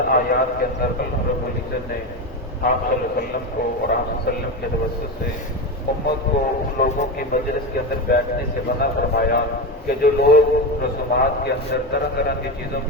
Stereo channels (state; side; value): normal; both; correlation 0.18